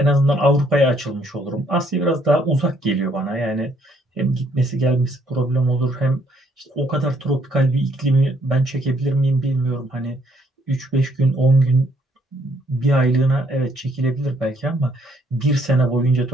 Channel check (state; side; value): normal; both; correlation 0.67